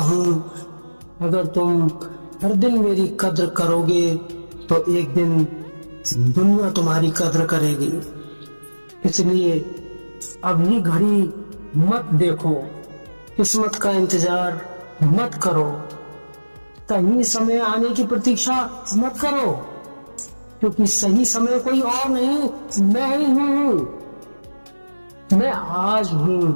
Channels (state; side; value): inverted; both; correlation -1.00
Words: अगर तुम हर दिन मेरी कद्र करोगे तो एक दिन दुनिया तुम्हारी कद्र करेगी। इसलिए अभी घड़ी मत देखो, किस्मत का इंतजार मत करो, सही समय आने की प्रतीक्षा मत करो, क्योंकि सही समय कोई और नहीं, मैं ही हूं। मैं आज हूं,